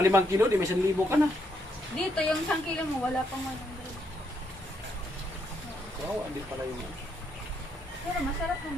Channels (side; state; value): both; normal; correlation 0.76